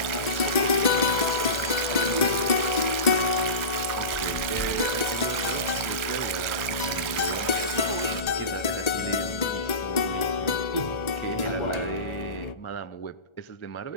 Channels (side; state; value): right; late; 1.3 ms